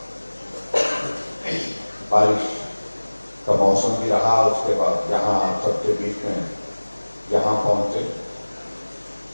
बारिश का मौसम भी रहा, उसके बाद यहाँ आप सबके बीच में यहाँ पहुंचे।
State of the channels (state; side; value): inverted; both; correlation -1.00